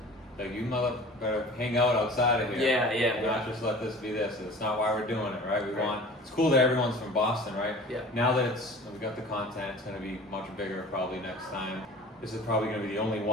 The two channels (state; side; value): normal; both; correlation 0.42